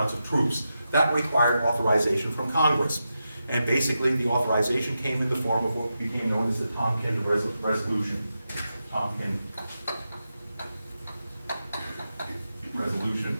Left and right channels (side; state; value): both; inverted; correlation -0.88